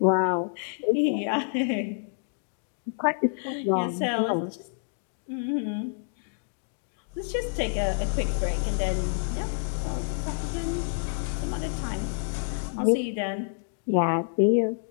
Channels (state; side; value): silent; right; digital silence